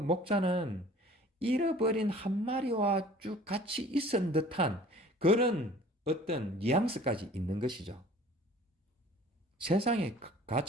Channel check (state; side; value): normal; both; correlation 0.49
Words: 잃어버린 한 마리와 쭉 같이 있은 듯한 그런 어떤 뉘앙스까지 있는 것이죠. 세상의